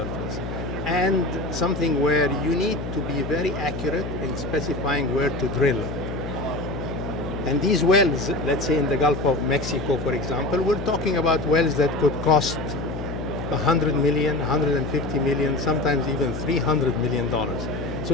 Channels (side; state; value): left; noise; hum, 6 dB below the sound